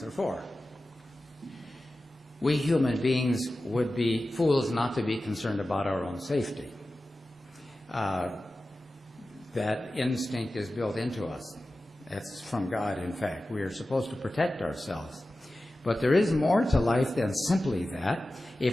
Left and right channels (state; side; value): normal; both; correlation 0.95